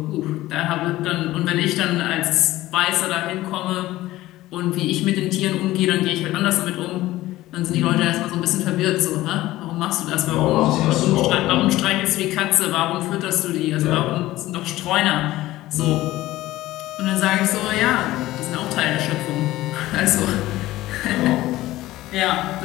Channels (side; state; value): right; quieter; 16.5 dB